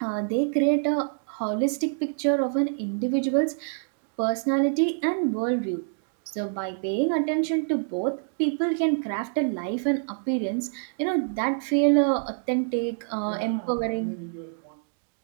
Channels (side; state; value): left; silent; digital silence